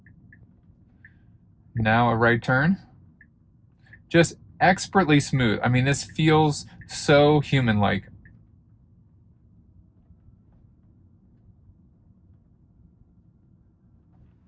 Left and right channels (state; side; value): identical; both; correlation 1.00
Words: Now a right turn. Just expertly smooth. I mean, this feels so human-like.